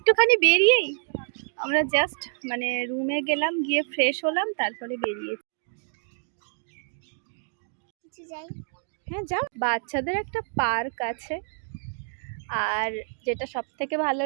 বেরিয়েই আমরা জাস্ট মানে রুমে গেলাম, গিয়ে ফ্রেশ হলাম, তারপরে বেরিয়েছি। হ্যাঁ যাও, বাচ্চাদের একটা পার্ক আছে। আর যেটা সব থেকে ভালো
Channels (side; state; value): left; silent; digital silence